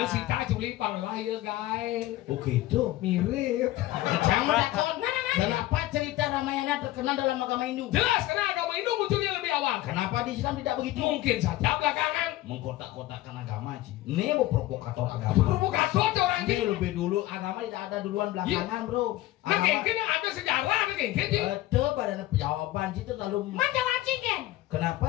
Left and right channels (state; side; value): quieter; right; 16.2 dB